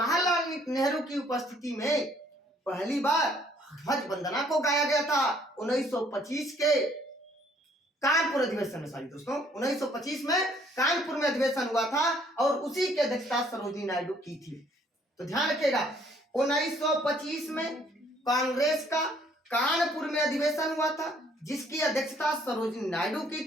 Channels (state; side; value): normal; both; correlation 0.62